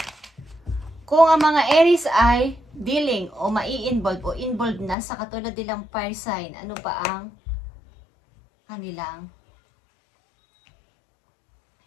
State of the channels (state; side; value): drops out; right; at 5.0 s